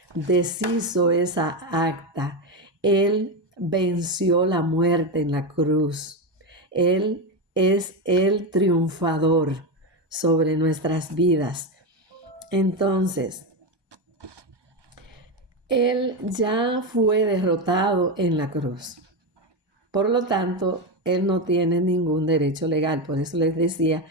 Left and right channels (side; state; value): left; late; 1.2 ms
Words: deshizo esa acta. Él venció la muerte en la cruz. Él es el triunfador sobre nuestras vidas. Entonces, Él ya fue derrotado en la cruz. Por lo tanto, Él no tiene ningún derecho legal. Por eso les decía